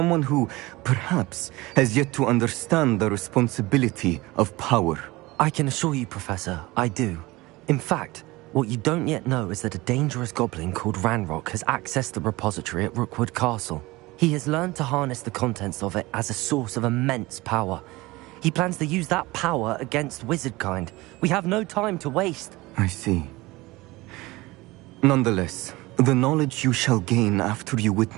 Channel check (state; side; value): quieter; left; 20.9 dB